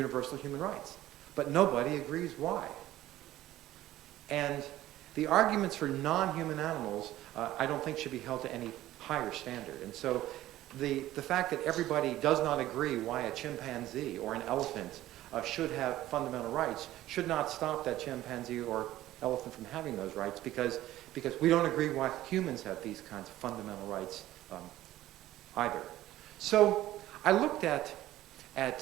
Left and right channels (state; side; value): quieter; left; 14.7 dB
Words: human rights, but nobody agrees why. And the arguments for non-human animals, I don't think should be held to any higher standard. And so the fact that everybody does not agree why a chimpanzee or an elephant should have fundamental rights should not stop that chimpanzee or elephant from having those rights, because we don't agree why humans have these kinds of fundamental rights either. So I looked at